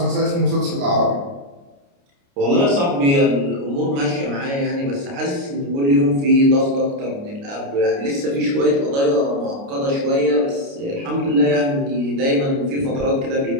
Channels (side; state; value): left; late; 29 ms